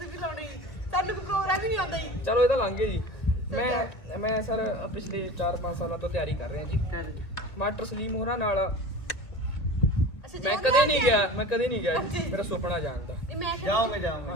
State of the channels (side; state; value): right; late; 1.5 ms